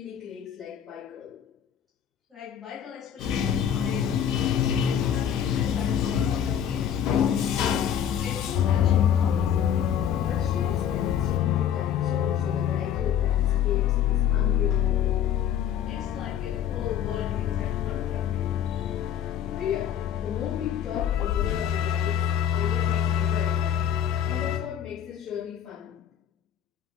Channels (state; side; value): quieter; right; 9.4 dB